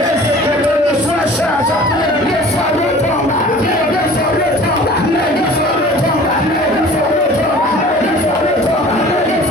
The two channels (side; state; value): both; normal; correlation 0.45